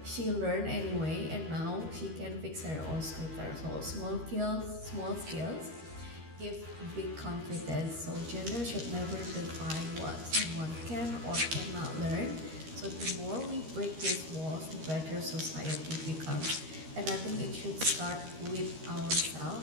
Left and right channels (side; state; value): left; late; 13 ms